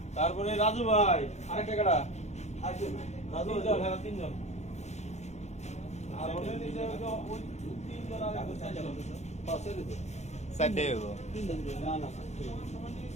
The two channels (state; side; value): late; right; 0.33 ms